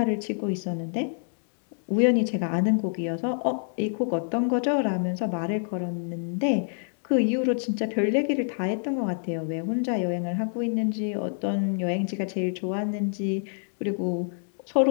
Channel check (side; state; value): right; silent; digital silence